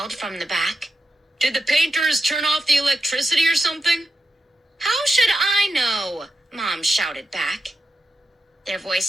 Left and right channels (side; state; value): both; normal; correlation 0.90